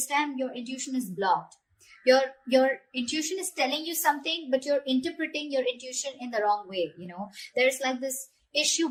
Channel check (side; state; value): both; identical; correlation 1.00